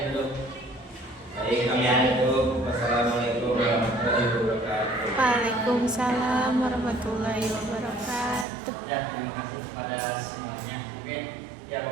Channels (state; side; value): drops out; left; at 8.5 s